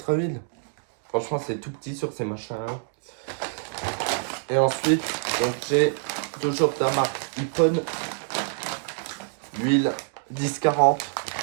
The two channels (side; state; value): left; silent; digital silence